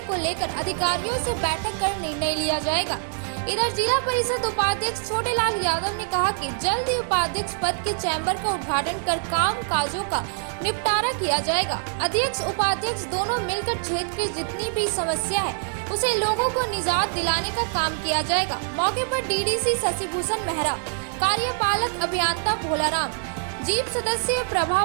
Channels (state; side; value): silent; left; digital silence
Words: को लेकर अधिकारियों से बैठक कर निर्णय लिया जाएगा। इधर जिला परिषद उपाध्यक्ष छोटेलाल यादव ने कहा कि जल्द ही उपाध्यक्ष पद के चैम्बर का उद्घाटन कर काम काजों का निपटारा किया जाएगा। अध्यक्ष उपाध्यक्ष दोनों मिलकर क्षेत्र की जितनी भी समस्या है उसे लोगों को निजात दिलाने का काम किया जाएगा। मौके पर डीडीसी शशिभूषण मेहरा, कार्यपालक अभियंता भोलाराम, जीप सदस्य प्रभा